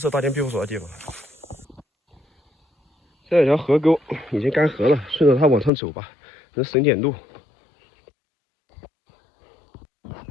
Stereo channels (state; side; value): drops out; right; at 5.7 s